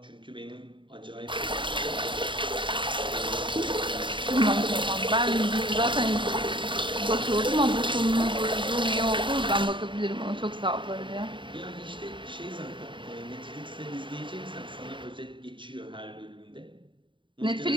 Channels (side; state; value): left; late; 0.24 ms